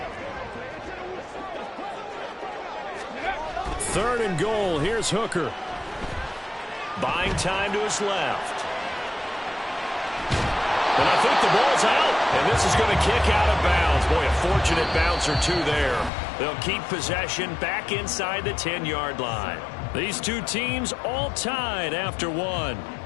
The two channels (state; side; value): drops out; right; at 16.1 s